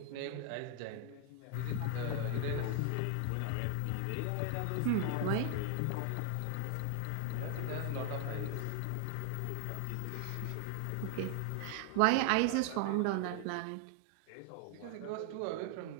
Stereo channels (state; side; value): different; both; correlation 0.00